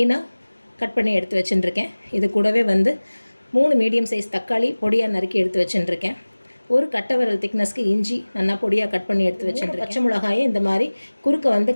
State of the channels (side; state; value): both; inverted; correlation -1.00